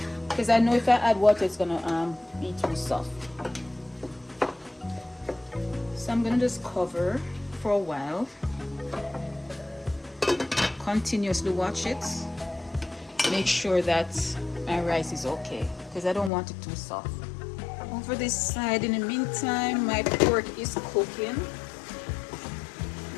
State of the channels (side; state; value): right; drops out; at 16.3 s